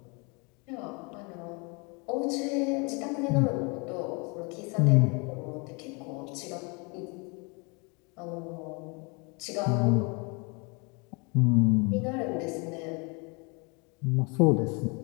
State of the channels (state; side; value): quieter; right; 31.3 dB